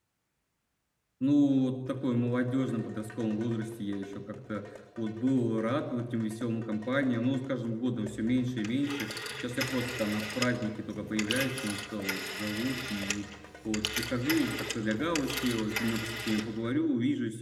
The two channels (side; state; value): both; identical; correlation 1.00